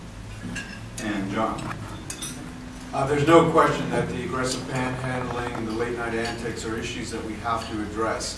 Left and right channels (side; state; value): both; identical; correlation 1.00